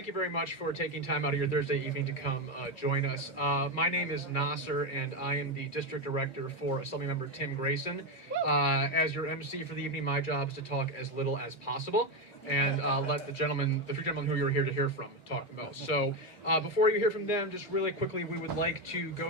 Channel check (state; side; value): late; right; 2.5 ms